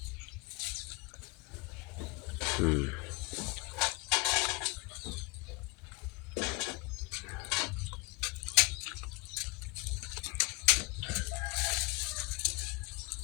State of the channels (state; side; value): quieter; right; 27.8 dB